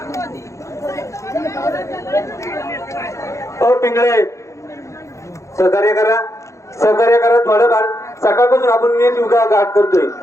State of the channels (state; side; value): late; right; 0.15 ms